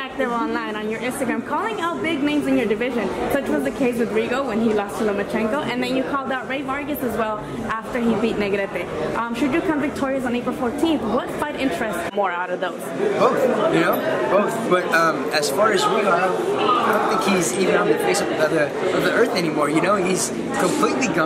online on your Instagram, calling out big names in your division. Such was the case with Rigo when he lost to Lomachenko, and then you called out Ray Vargas as well after he beat Negrete. Should you come victorious on April 14th, what fight interests more out of those? Both, both. But as far as Rigo, I don't think he's even on the face of the earth anymore. He's completely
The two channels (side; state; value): both; identical; correlation 1.00